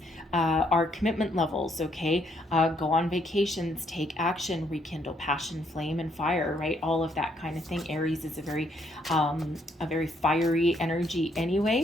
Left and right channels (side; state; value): both; normal; correlation 0.71